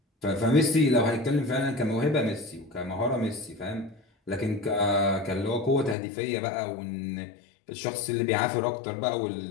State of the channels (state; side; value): drops out; right; at 6.0 s